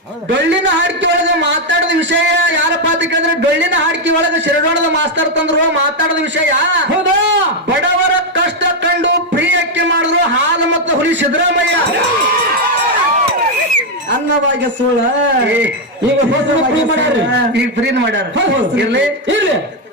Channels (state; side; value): normal; both; correlation 0.03